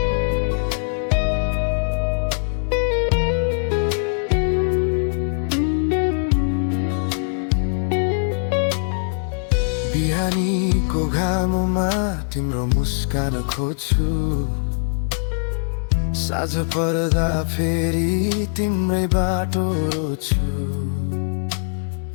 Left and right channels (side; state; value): right; silent; digital silence